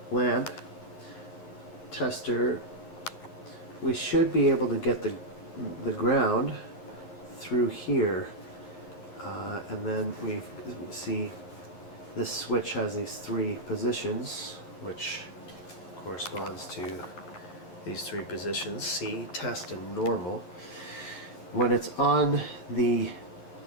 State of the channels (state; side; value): late; right; 11 ms